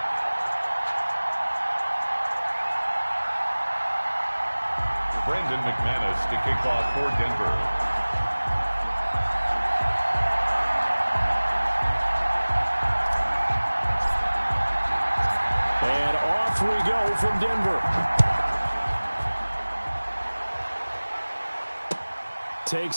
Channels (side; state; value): both; inverted; correlation -1.00